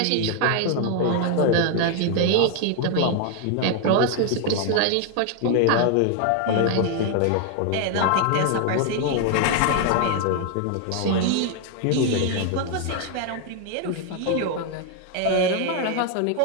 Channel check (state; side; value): different; both; correlation 0.00